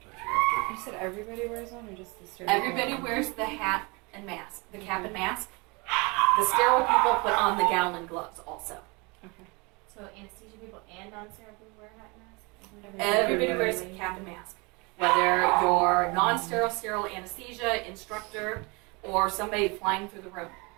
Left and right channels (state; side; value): quieter; left; 28.3 dB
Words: it after. You said everybody wears one, or just the sterile? Everybody wears the hat and mask, the cap and mask. The sterile people put on the gown and gloves also. Okay. So anesthesia people and non-sterile people wear hat masks? Everybody wears a cap and mask. Whether you're non-sterile, sterile anesthesia, instructor, or somebody flying through the room.